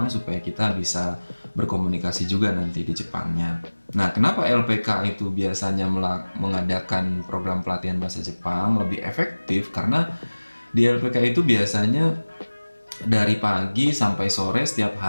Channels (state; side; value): inverted; both; correlation -1.00